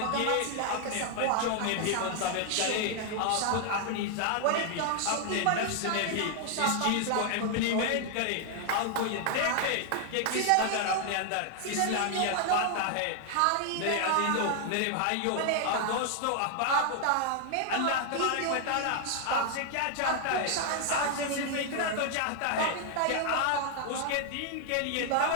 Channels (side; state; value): both; different; correlation 0.00